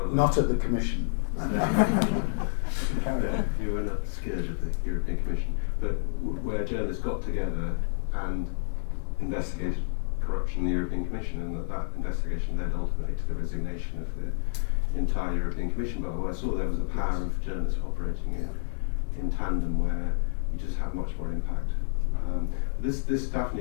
a Not at the Commission. Carry on. You were a scourge of the European Commission, but where journalists got together and investigated corruption in the European Commission, and that investigation led ultimately to the resignation of the entire European Commission. But what I saw there was the power of journalists operating in tandem, where you just have much more impact. But this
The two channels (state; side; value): silent; right; digital silence